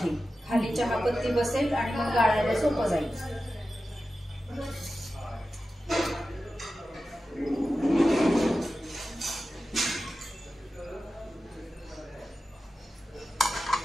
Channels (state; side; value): normal; both; correlation 0.93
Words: खाली चहापत्ती बसेल आणि मग गाळायला सोपं जाईल।